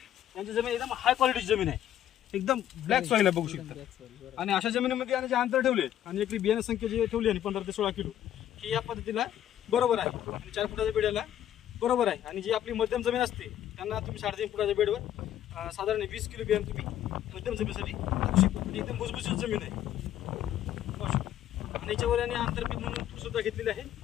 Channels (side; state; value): right; quieter; 11.4 dB